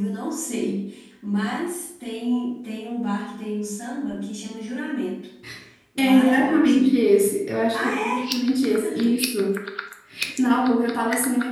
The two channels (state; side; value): identical; both; correlation 1.00